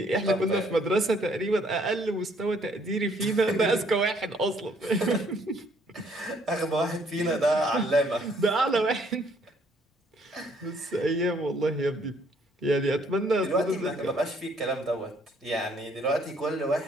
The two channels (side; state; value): both; normal; correlation 0.65